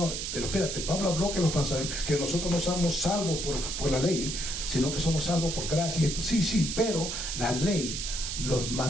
pero espérate, Pablo habló que nosotros no somos salvos por la ley, sino que somos salvos por gracia. Esto, sí, pero la ley, los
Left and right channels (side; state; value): right; noise; hiss, 4 dB below the sound